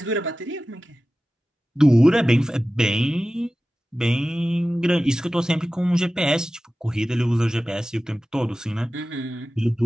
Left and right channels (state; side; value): normal; both; correlation 0.95